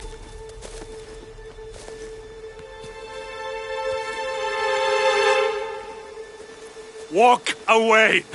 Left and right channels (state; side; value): identical; both; correlation 1.00